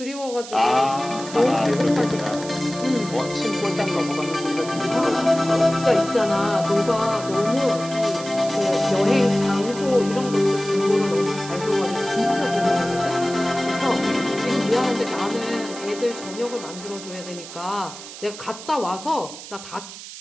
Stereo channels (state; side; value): noise; right; hiss, 13 dB below the sound